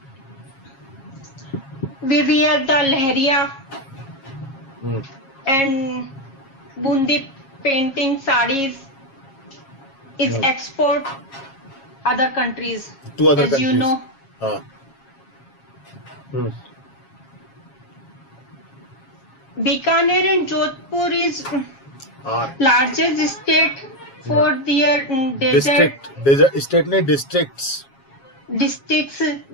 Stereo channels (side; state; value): right; late; 7.3 ms